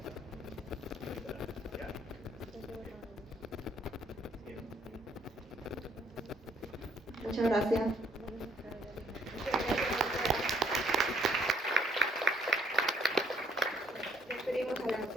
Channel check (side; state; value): both; normal; correlation 0.67